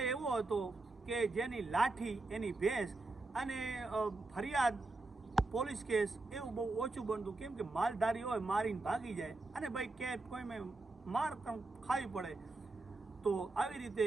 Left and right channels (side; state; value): left; quieter; 3.2 dB